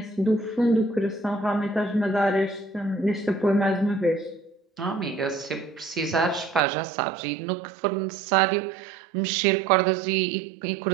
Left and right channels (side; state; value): left; drops out; at 6.6 s